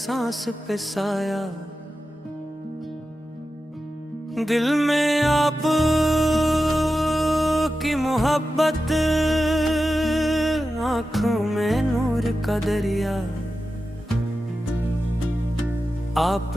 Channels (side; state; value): both; normal; correlation 0.92